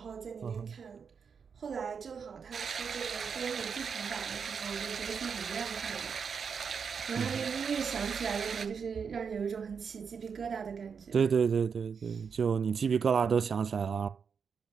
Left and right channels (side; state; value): left; quieter; 6.2 dB